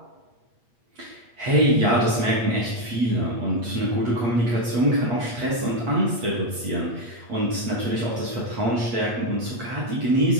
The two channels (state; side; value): late; left; 8.4 ms